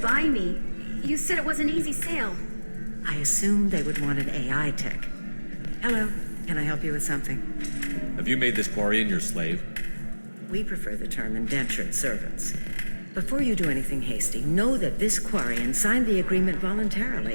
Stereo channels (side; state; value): both; inverted; correlation -1.00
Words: me. You said it was an easy sale. I assumed they would want an AI tech. Hello, can I help you with something? Have you made this Quarian your slave? We prefer the term indentured servants. Before you do anything hasty, know that this Quarian signed the agreement